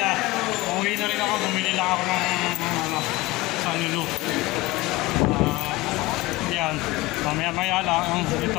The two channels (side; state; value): right; quieter; 19.9 dB